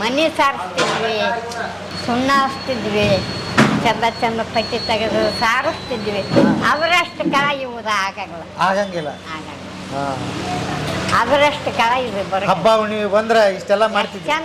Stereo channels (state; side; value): identical; both; correlation 1.00